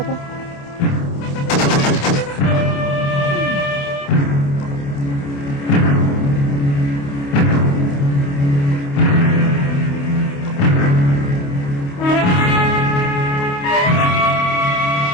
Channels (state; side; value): late; right; 28 ms